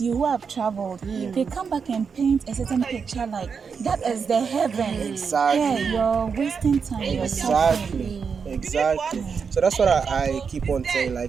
you who have traveled. They come back and paint a certain picture like that is the heaven. Exactly. Yeah, you're wasting time. You're suffering. Exactly. So that's what I keep on saying.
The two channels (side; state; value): left; quieter; 5.9 dB